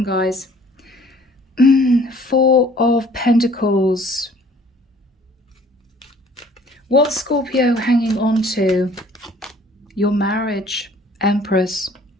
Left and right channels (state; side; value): normal; both; correlation 0.55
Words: guys. 4 of Pentacles. What's Scorpio hanging on to? Your marriage, Empress.